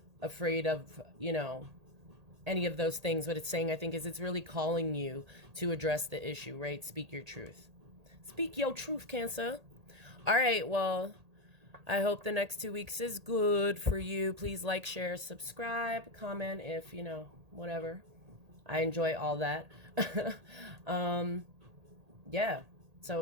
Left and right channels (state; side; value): late; left; 1.8 ms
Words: afraid of, you know, any of those things, what it's saying, I think, is it's really calling you to address the issue, right? Speak your truth. Speak your truth, Cancer. All right, well, I hope the next 2 weeks is good for you. Please like, share, subscribe, comment if, you know, whatever. I enjoy all that. Yeah.